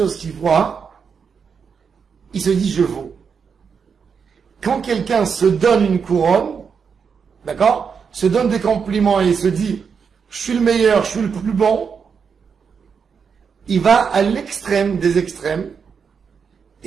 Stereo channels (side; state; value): left; quieter; 6.2 dB